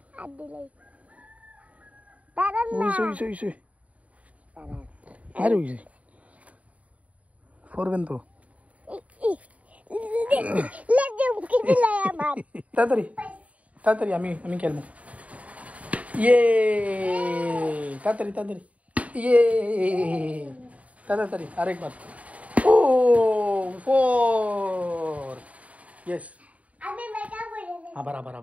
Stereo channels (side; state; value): left; late; 0.068 ms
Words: আর দিলাই দাঁড়ান না ওইসে আর ওইসে পড়বেন তো লেজে মুখে দিলাই আমার তাড়াতাড়ি আমি খেলবো ইয়ে তাড়াতাড়ি ইয়ে তাড়াতাড়ি আরেকবার ও 4 ইয়েস আমি মেকা বলে